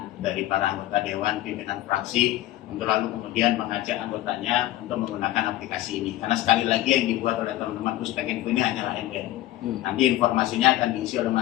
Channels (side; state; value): right; quieter; 15.2 dB